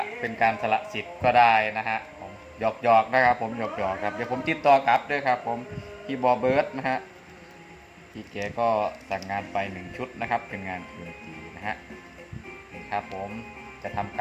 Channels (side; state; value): both; identical; correlation 1.00